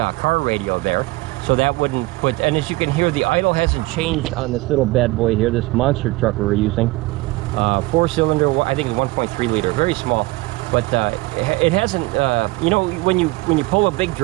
car radio there. So that wouldn't put, and as you can hear, the idle hasn't changed on this little bad boy here, this monster truck we're using. 4-cylinder, I think it's 1.3 liter, very small. But it hasn't, you know, when you pull a big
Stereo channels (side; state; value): left; quieter; 21.4 dB